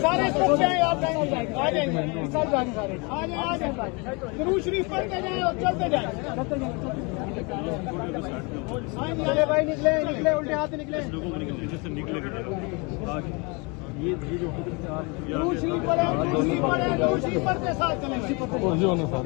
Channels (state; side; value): quieter; right; 29.9 dB